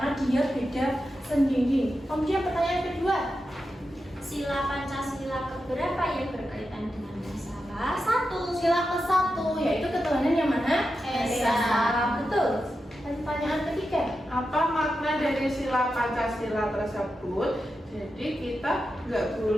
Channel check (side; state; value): both; normal; correlation 0.89